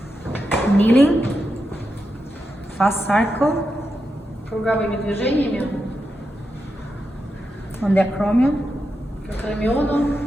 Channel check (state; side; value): normal; both; correlation 0.87